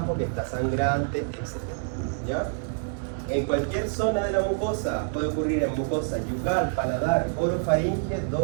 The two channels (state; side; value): silent; left; digital silence